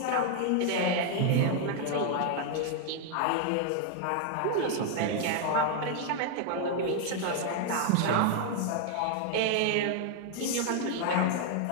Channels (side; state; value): both; different; correlation 0.00